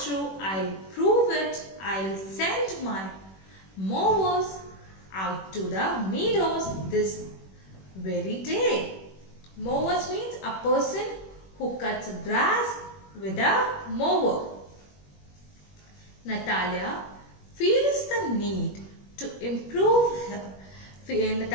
I'll prove it. I'll send my mowers out to the meadows this very day. Mowers means a person who cuts grass with a mower. Natalia feels the need to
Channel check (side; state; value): right; late; 21 ms